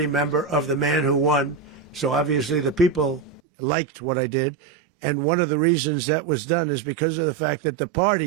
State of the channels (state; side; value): drops out; left; at 3.4 s